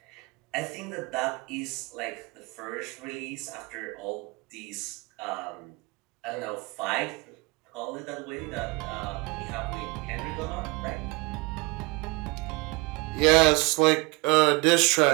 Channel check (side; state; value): left; quieter; 27.1 dB